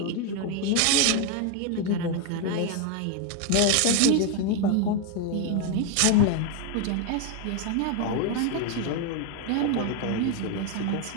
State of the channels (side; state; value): both; different; correlation 0.01